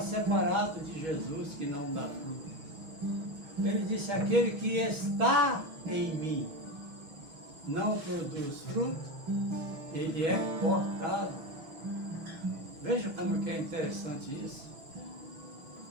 de Jesus que não dá fruto. Ele disse, aquele que está em mim não produz fruto, ele é cortado. Veja como que é interessante isso.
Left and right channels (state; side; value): late; left; 6.3 ms